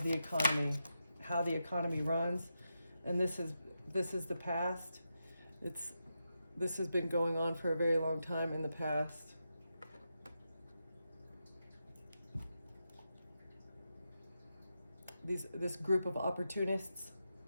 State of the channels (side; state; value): both; inverted; correlation -0.87